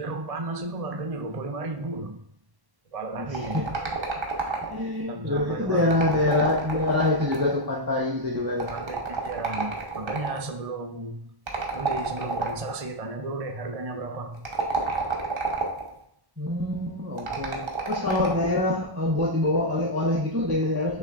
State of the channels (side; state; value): left; late; 1.1 ms